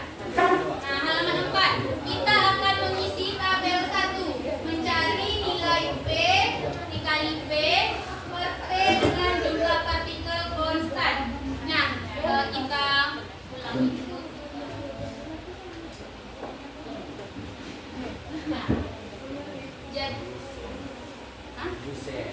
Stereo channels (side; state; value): both; identical; correlation 1.00